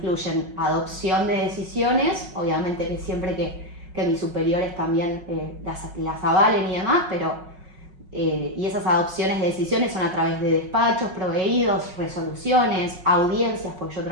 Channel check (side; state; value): left; late; 5.4 ms